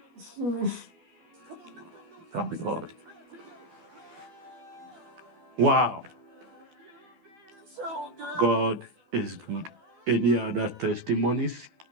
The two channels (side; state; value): left; late; 13 ms